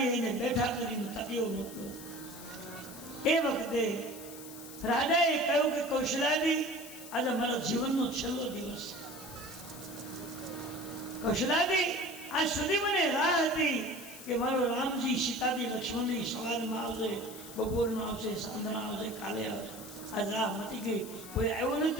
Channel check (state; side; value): noise; left; hiss, 14 dB below the sound